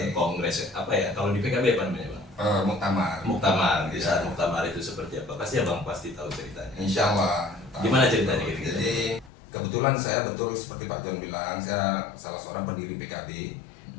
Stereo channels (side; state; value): right; drops out; at 9.3 s